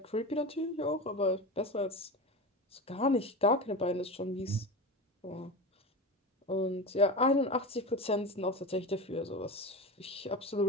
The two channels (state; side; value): normal; both; correlation 0.26